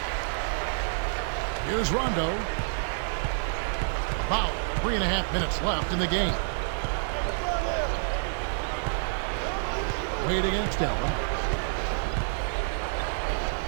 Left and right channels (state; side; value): silent; left; digital silence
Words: Here's Rondo. About 3.5 minutes left in the game. Wade against Allen.